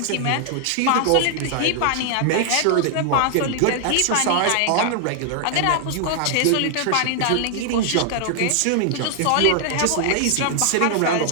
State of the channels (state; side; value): different; both; correlation -0.01